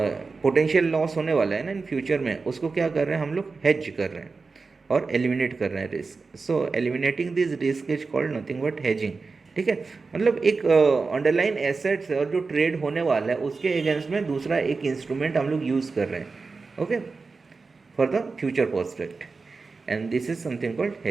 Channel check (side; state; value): left; quieter; 4.3 dB